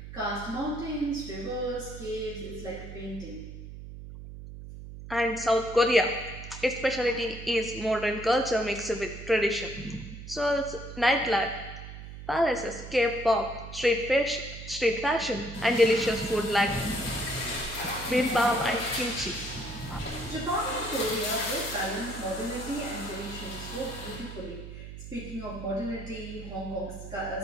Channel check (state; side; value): noise; right; hum, 12 dB below the sound